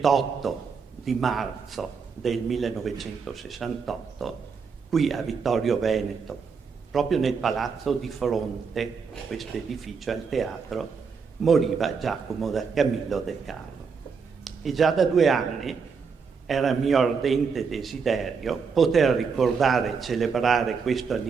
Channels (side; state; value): left; quieter; 5.6 dB